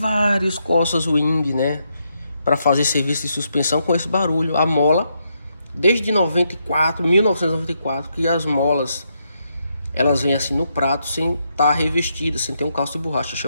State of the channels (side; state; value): both; inverted; correlation -0.80